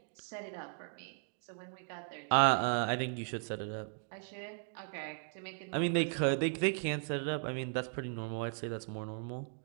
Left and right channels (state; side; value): silent; left; 53 dB below the other